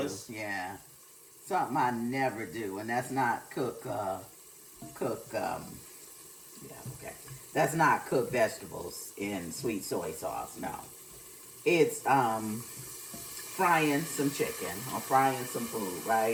do. Yeah, something I never do, and that's not cook. Yeah, okay. That's not cook vegetables in sweet soy sauce. No, it's frying some chicken or frying some food.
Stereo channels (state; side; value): identical; both; correlation 1.00